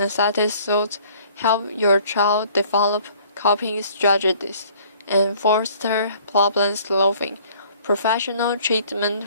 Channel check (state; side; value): inverted; both; correlation -0.56